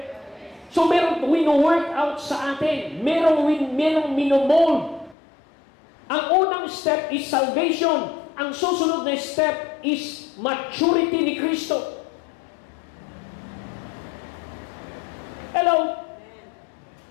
So, merong wino-work out sa atin. Merong minomold. Ang unang step is salvation. Ang susunod na step is maturity ni Kristo. Hello?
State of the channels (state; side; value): drops out; right; at 5.2 s